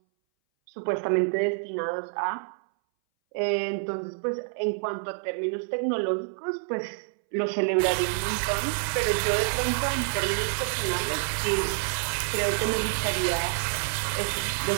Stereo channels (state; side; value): silent; left; 59 dB below the other